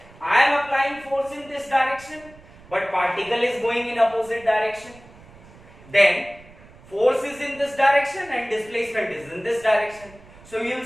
I am applying force in this direction, but particle is going in opposite direction. Then force is in this direction and displacement is in this direction. So you will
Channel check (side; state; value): right; noise; rumble, 23 dB below the sound